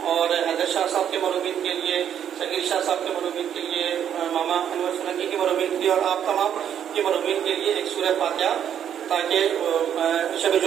اور حیدر شاہ صاحب کے مرحومین کے لیے، شکیل شاہ صاحب کے مرحومین کے لیے، ماما انور سنگی کے مرحومین کے لیے، اور آپ تمام کے مرحومین کے لیے ایک سورہ فاتحہ، تاکہ شب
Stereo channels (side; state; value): left; quieter; 9.3 dB